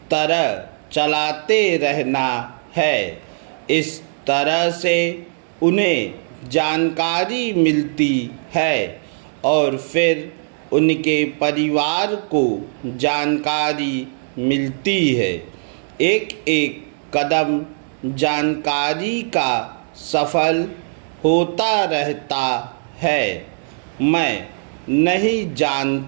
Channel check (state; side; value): silent; left; digital silence